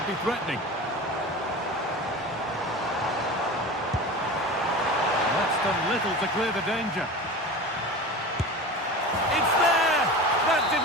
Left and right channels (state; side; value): normal; both; correlation 0.32